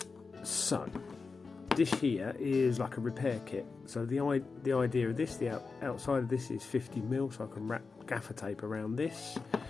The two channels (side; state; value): right; quieter; 4.5 dB